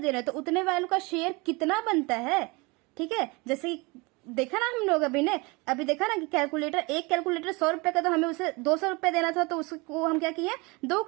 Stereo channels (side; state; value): left; quieter; 26.6 dB